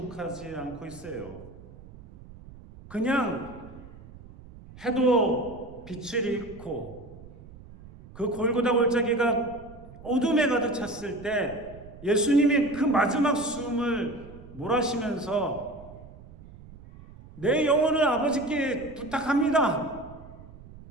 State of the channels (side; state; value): right; noise; rumble, 18 dB below the sound